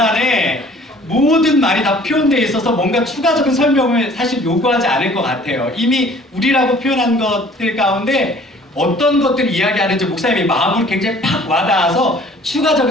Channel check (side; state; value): both; normal; correlation 0.52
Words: 모든 말이 다 표현되어 있어서 뭔가 추가적인 설명을 사실 요구하지 않을 것 같아요. 이미 우리라고 표현한 것들 가운데 어떤 것들을 이야기하는지 목사님이 마음으로 굉장히 팍 와닿아서